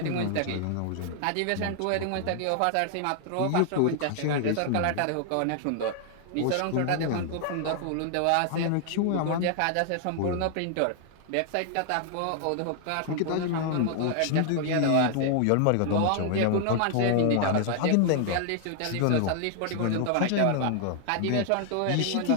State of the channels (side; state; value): both; different; correlation 0.00